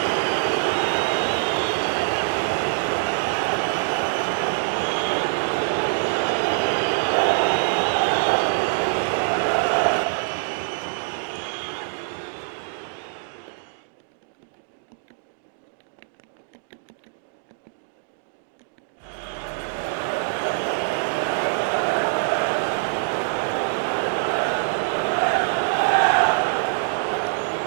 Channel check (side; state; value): left; silent; digital silence